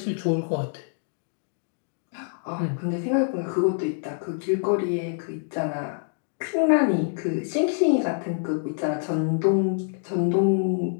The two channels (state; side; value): silent; right; digital silence